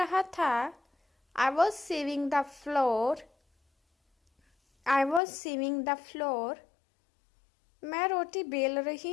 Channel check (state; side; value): drops out; right; at 5.2 s